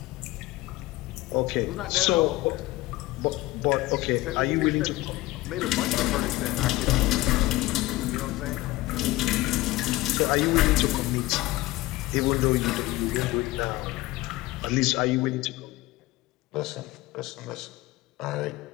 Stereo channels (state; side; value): quieter; right; 18.9 dB